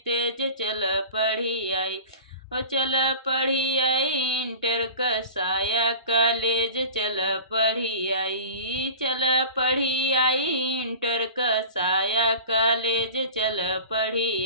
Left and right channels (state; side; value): inverted; both; correlation -0.38